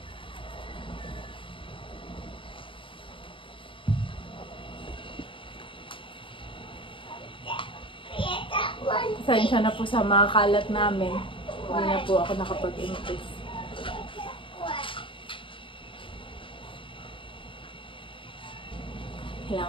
Pasensya na po sa mga kalat namin. Hindi na po ako nakapag-impress.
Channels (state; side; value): late; right; 0.25 ms